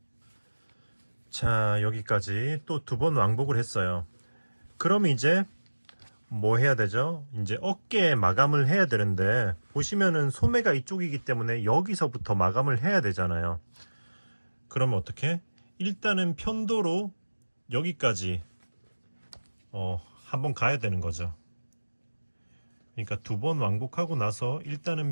자, 여기까지 또 2번 왕복을 했어요. 그럼 이제 뭐 해야 되죠? 이제 어깨에 마감을 해야 되는데, 보시면은 소매가 이쪽이기 때문에 여기서부터 마감을 해야 되잖아요. 그러면 어떻게? 일단은 편도로 여기까지 한번 가야 되는 거죠. 그러니까 2번 왕복하고 나서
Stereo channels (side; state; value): both; inverted; correlation -1.00